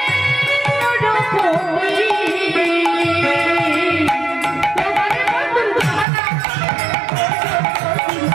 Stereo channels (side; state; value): left; drops out; at 6.1 s